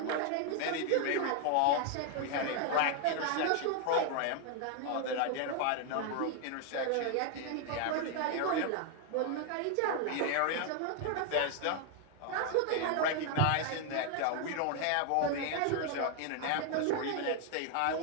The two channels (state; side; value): different; both; correlation 0.00